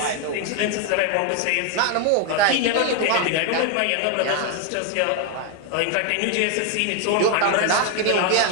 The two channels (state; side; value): different; both; correlation 0.01